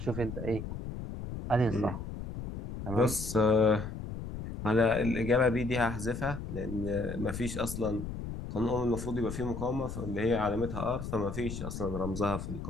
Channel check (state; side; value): noise; left; rumble, 7 dB below the sound